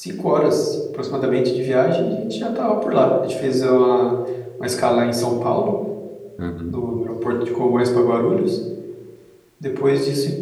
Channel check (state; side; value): identical; both; correlation 1.00